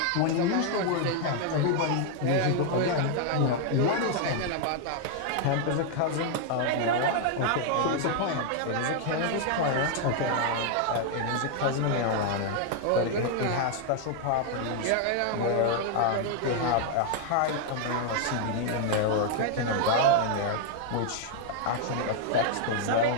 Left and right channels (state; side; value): different; both; correlation 0.00